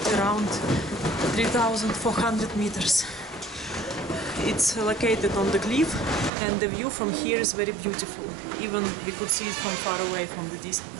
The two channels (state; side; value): drops out; left; at 6.3 s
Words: around 3,400 meters. It's located on the cliff, and the view from here is very beautiful. Even we could see it from far away, from the